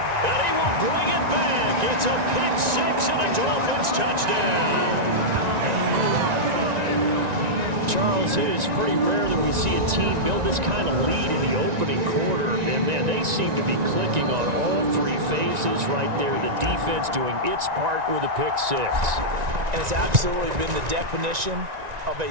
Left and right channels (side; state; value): left; late; 1.9 ms